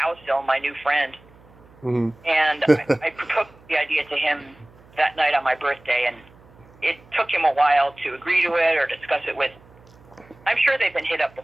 my new friend. Mm-hmm. And I proposed the idea to him that night on my birthday, and it took him a while to agree to it or discuss it with. I'm sure they've been hit up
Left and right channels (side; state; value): right; noise; hum, 26 dB below the sound